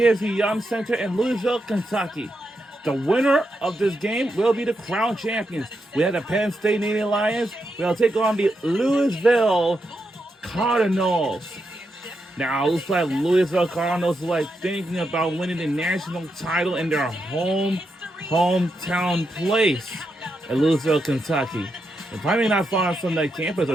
Young Center in Louisville, Kentucky. The winner of this game will be the crown champions. We have the Penn State Nittany Lions. We'll take on the Louisville Cardinals. Now, it looks like Louisville Cardinals are thinking about winning the national title in their hometown place in Louisville, Kentucky. They're probably not far from the campus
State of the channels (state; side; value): normal; both; correlation 0.84